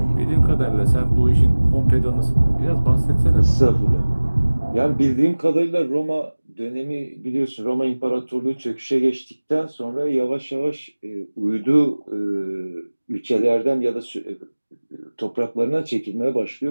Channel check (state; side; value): inverted; both; correlation -1.00